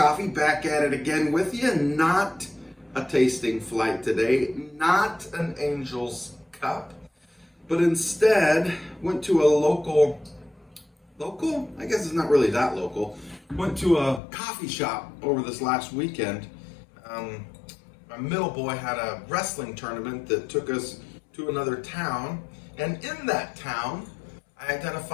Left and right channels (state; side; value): drops out; right; at 14.2 s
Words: back at it again with you. Not a tasting flight today, not an Angel's Cup, but instead went to a local, I guess it's not really that local, went to a coffee shop over this last weekend. My middle boy had a wrestling tournament that took us to another town, and in that town, I